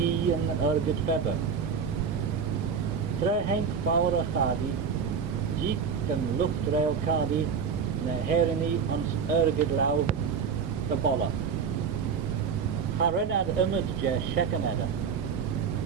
and Ergid Feber. Tre Henk Faura Khadi, Jeek and Luftrail Khadi, na Herini and Ergid Lau, the Bolla. Harenad Imad Je Shekaneda.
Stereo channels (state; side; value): quieter; left; 6.3 dB